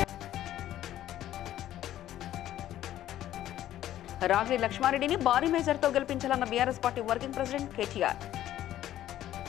రాగిడి లక్ష్మారెడ్డిని భారీ మేజర్తో గెలిపించాలన్న BRS party working president KTR.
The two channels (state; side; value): quieter; right; 12.7 dB